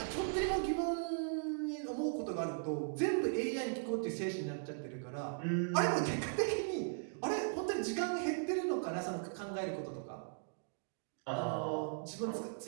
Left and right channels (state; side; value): silent; left; digital silence